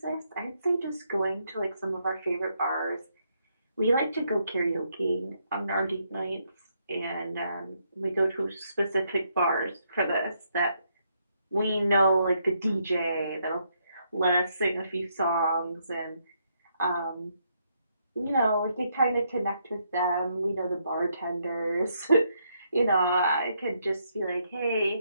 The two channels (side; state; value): both; inverted; correlation -0.76